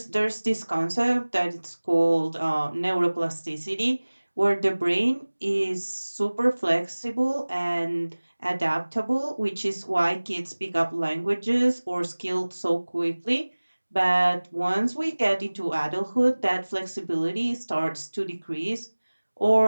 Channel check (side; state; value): both; inverted; correlation -1.00